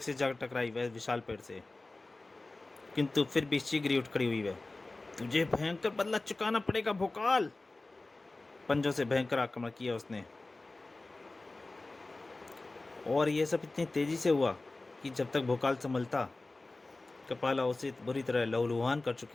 जा टकराई वह विशाल पेड़ से, किंतु फिर भी शीघ्र ही उठ खड़ी हुई वह। तुझे भयंकर बदला चुकाना पड़ेगा भोकाल। पंजों से भयंकर आक्रमण किया उसने, और यह सब इतनी तेजी से हुआ कि जब तक भोकाल संभलता, कपाला उसे बुरी तरह लहूलुहान कर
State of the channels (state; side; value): quieter; right; 3.2 dB